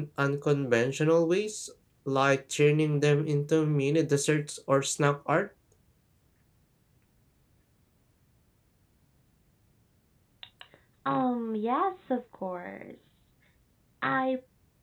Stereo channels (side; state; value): both; identical; correlation 1.00